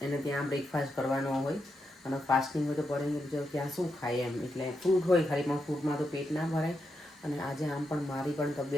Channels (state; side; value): normal; both; correlation 0.84